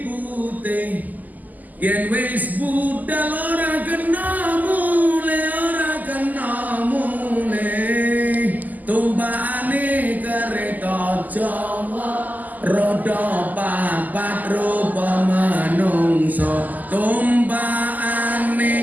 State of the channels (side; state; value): left; late; 0.082 ms